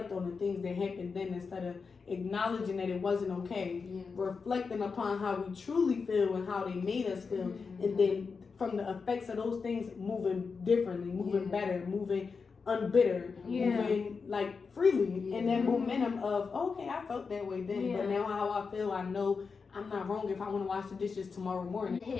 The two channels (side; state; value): right; quieter; 5.1 dB